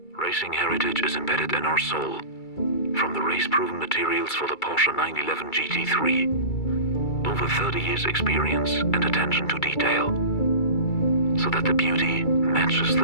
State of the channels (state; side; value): late; right; 2.3 ms